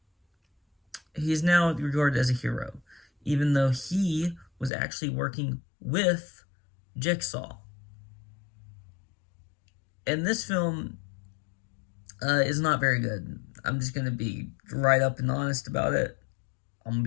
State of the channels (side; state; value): right; drops out; at 4.7 s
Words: he's now regarded as a hero, even though he was actually working with Jigsaw. And this film is not very good. I'm just gonna be right up and honest about it. I'm gonna